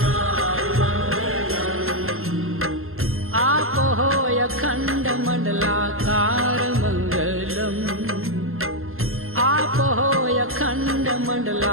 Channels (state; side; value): late; left; 0.62 ms